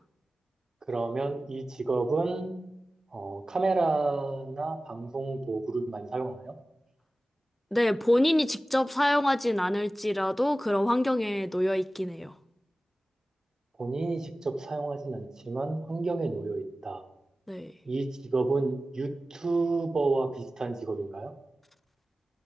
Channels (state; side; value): normal; both; correlation 0.96